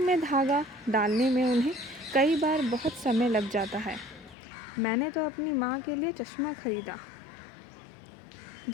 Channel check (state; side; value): drops out; right; at 4.4 s